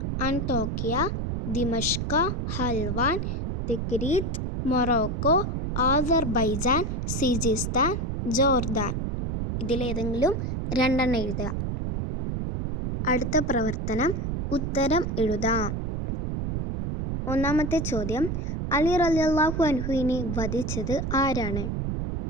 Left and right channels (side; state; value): right; noise; rumble, 2 dB below the sound